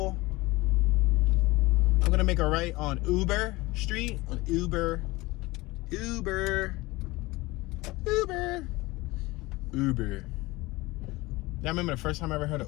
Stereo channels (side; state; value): right; quieter; 21.3 dB